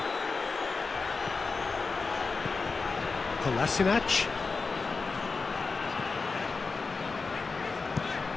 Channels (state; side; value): quieter; right; 4.3 dB